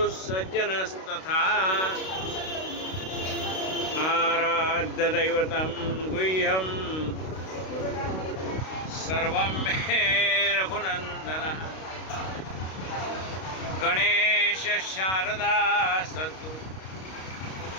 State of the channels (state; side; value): late; right; 32 ms